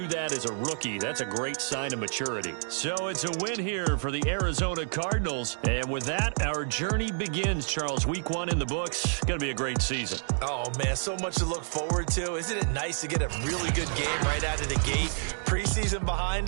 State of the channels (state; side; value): silent; left; digital silence